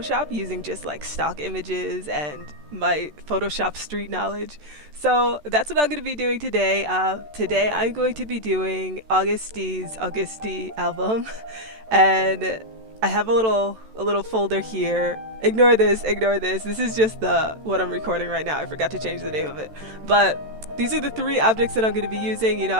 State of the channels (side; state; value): left; late; 13 ms